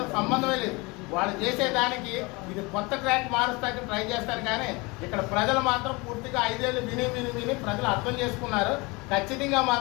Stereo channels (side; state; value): right; quieter; 25.9 dB